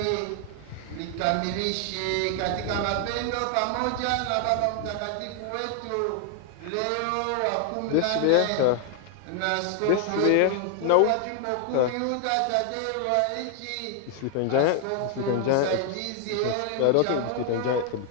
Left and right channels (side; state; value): both; different; correlation 0.00